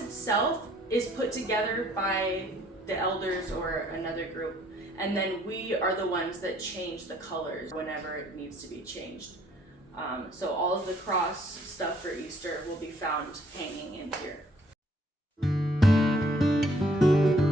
itself is put together by the elders or another group, and then we are the ones that change the colors whenever it needs to be changed. So all of the cross stuff for Easter will be found hanging in here.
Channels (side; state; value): both; normal; correlation 0.63